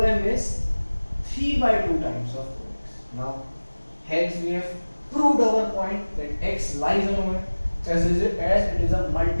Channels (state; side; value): inverted; both; correlation -1.00